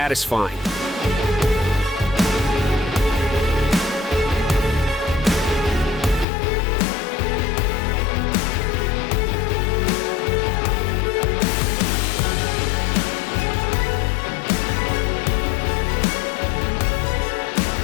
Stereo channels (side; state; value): right; drops out; at 6.2 s